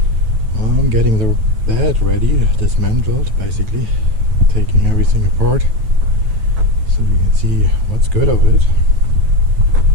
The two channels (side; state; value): left; late; 9.1 ms